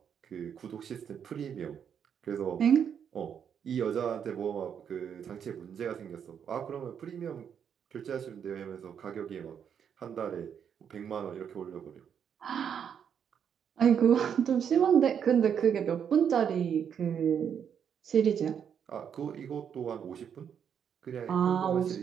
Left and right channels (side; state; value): left; quieter; 8.0 dB